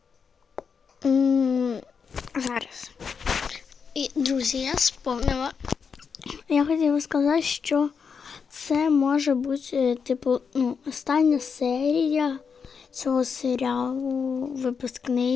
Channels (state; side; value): quieter; right; 6.1 dB